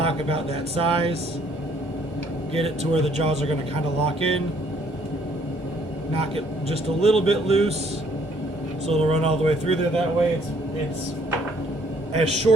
about that size, get it to where the jaws are going to kind of lock in, knock it just a little bit loose so it'll run all the way through there. That way it's as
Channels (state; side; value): normal; both; correlation 0.64